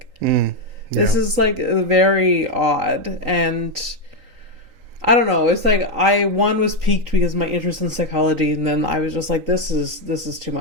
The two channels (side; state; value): left; late; 3.8 ms